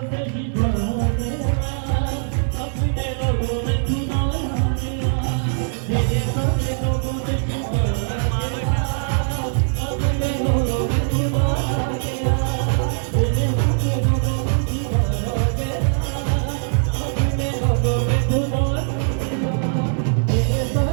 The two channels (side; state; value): left; silent; digital silence